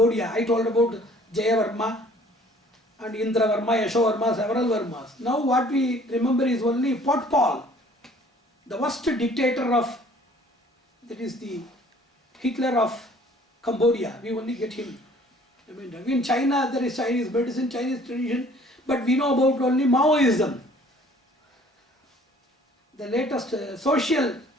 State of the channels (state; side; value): normal; both; correlation 0.55